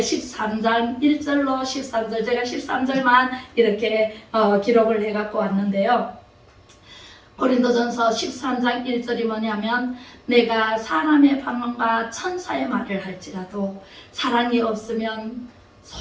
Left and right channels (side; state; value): both; identical; correlation 1.00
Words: 1절로 13절 제가 13절만 이렇게 기록을 해갖고 왔는데요. 고린도전서 13장 1절이 뭐냐면 내가 사람의 방언과 천사의 말을 할지라도 사랑이 없으면